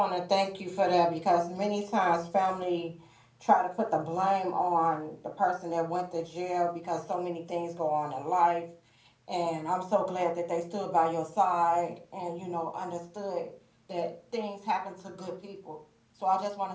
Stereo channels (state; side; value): identical; both; correlation 1.00